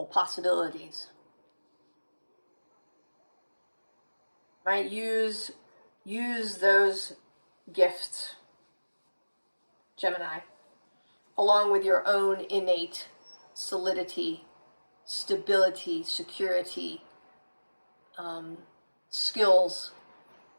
possibilities. Right? Use those gifts, Gemini, along with your own innate solidity, stability, security, skills,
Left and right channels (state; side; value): inverted; both; correlation -1.00